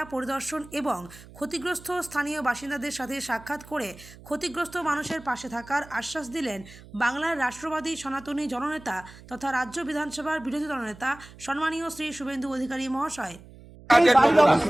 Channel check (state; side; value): noise; right; hum, 20 dB below the sound